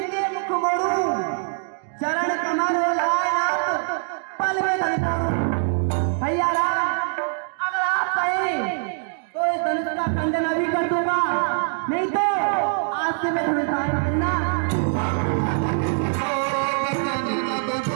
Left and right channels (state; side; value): silent; left; 63 dB below the other